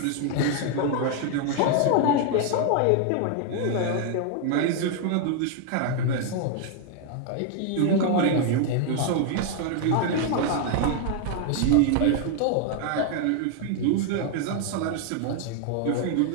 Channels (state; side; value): different; both; correlation 0.00